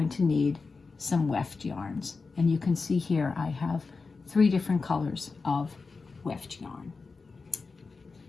to need some weft yarns, and you can see here I have 3 different colors of weft yarn.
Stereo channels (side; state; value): right; quieter; 4.3 dB